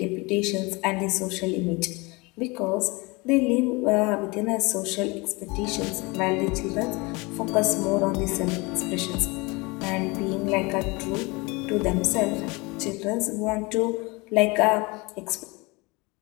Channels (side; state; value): right; quieter; 25.8 dB